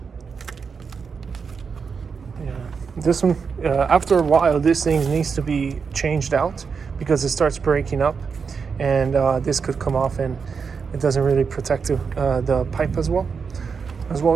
This one, after a while, this thing needs to be changed out because it starts breaking up, and this could come off, and it doesn't really protect the pipe as well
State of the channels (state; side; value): quieter; left; 5.7 dB